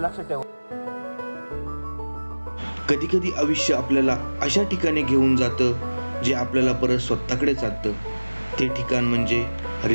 ठेवा. कधी कधी आयुष्य आपल्याला अशा ठिकाणी घेऊन जातं जे आपल्याला परत स्वतःकडे जातं. ते ठिकाण म्हणजे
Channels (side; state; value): both; inverted; correlation -1.00